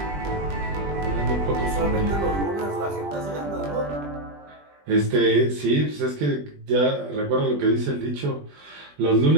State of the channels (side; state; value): left; late; 20 ms